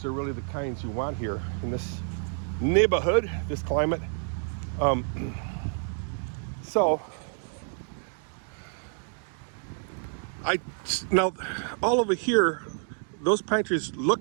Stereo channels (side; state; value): left; silent; 55 dB below the other